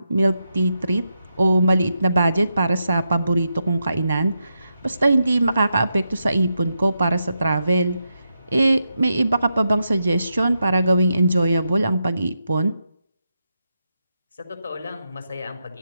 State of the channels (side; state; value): both; inverted; correlation -0.86